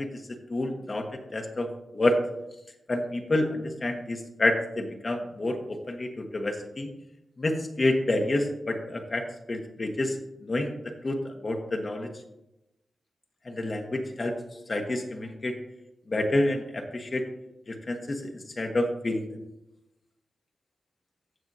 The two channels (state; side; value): normal; both; correlation 0.94